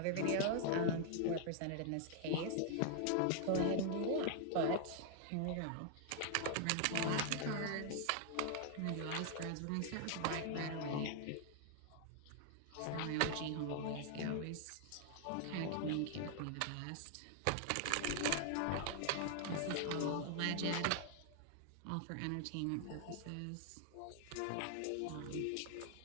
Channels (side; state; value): both; different; correlation 0.00